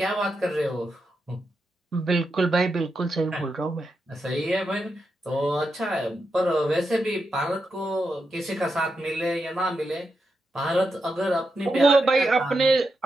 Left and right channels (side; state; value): both; normal; correlation 0.86